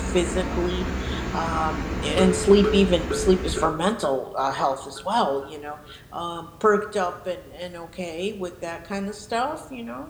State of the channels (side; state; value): both; identical; correlation 1.00